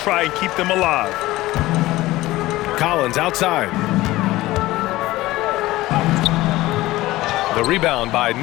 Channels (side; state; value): right; quieter; 17.7 dB